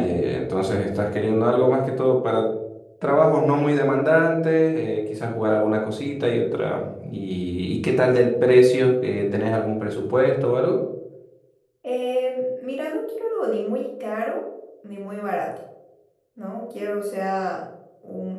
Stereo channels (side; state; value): both; identical; correlation 1.00